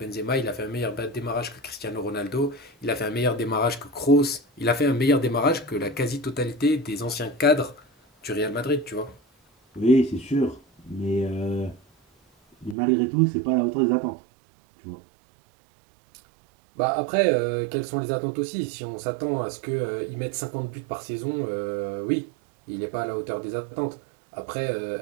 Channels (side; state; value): left; drops out; at 12.8 s